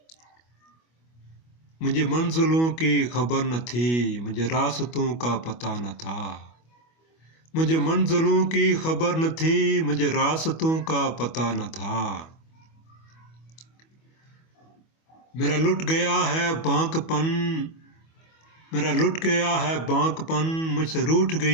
मुझे मंजिलों की खबर न थी, मुझे रास्तों का पता न था, मुझे मंजिलों की खबर न थी, मुझे रास्तों का पता न था। मेरा लुट गया है बांकपन, मेरा लुट गया है बांकपन, मुझसे रूठ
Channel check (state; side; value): late; right; 25 ms